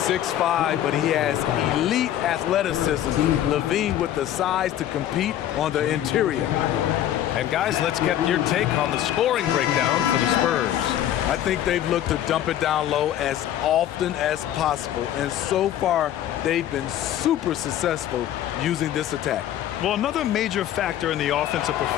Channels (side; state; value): right; quieter; 11.7 dB